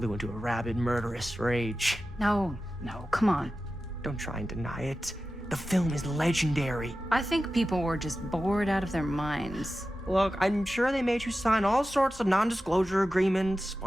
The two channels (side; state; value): both; normal; correlation 0.94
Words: into a rabid, murderous rage. No, come on. Don't try and deny it. The film is legendary. I think people were just bored out of their minds. Look, I'm sure they made you sign all sorts of non-disclosure agreements,